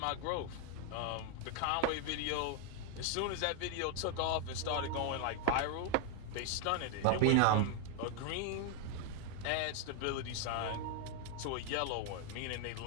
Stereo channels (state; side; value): different; both; correlation 0.00